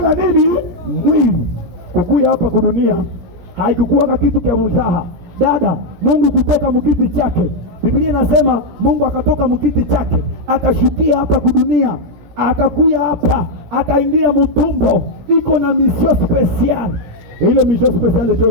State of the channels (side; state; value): left; late; 17 ms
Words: nini? Mwili. Kukuya hapa kudunia haikukuwa kitu kia mzaha. Dada, Mungu kutoka mkiti chake. Biblia inasema Mungu akatoka mkiti chake, akashukia hapa kudunia, akakuya hapa, akaingia mtumbo. Iko na mission special. Ile mission special ndio